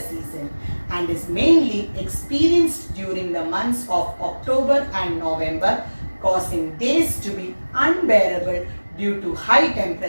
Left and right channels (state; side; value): inverted; both; correlation -1.00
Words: and is mainly experienced during the months of October and November, causing days to be unbearable due to high